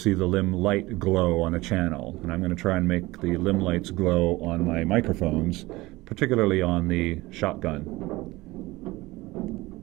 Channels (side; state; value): left; quieter; 20.2 dB